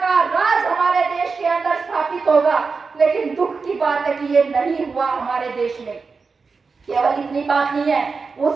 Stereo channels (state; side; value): quieter; left; 4.7 dB